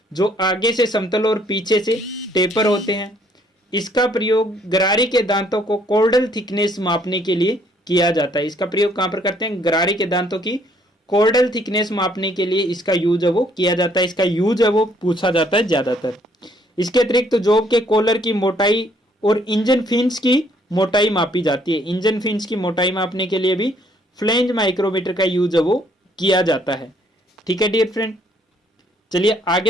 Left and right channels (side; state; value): both; normal; correlation 0.65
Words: जो आगे से समतल और पीछे से टेपर होते हैं। इसका प्रयोग गरारी के दांतों को कॉर्डल थिकनेस मापने के लिए किया जाता है। इसका प्रयोग कहाँ पर करते हैं, गरारी के दांतों की कॉर्डल थिकनेस मापने के लिए इसका यूज है वो किया जाता है। इसका यूज है वो पूछा जाता है ज्यादातर। इसके अतिरिक्त तो जॉब के कॉलर की मोटाई और इंजन फिन्स की मोटाई मापी जाती है। इंजन फिन्स की मोटाई मापने के लिए भी फ्लेंज माइक्रोमीटर का यूज है वो किया जाता है। ठीक है डियर फ्रेंड, चलिए